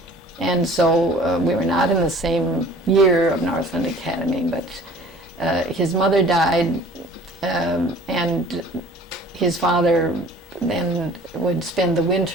And so we were not in the same year of Northland Academy, but his mother died, and his father then would spend the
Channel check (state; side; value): normal; both; correlation 0.49